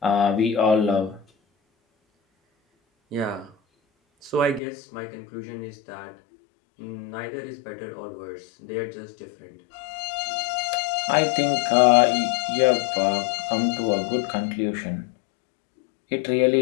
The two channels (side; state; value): right; drops out; at 4.6 s